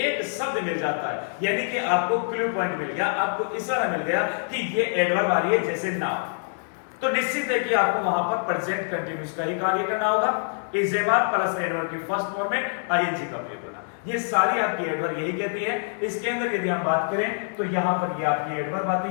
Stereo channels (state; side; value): silent; right; digital silence